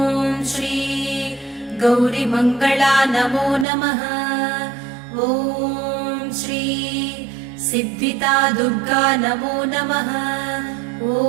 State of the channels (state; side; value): drops out; left; at 3.7 s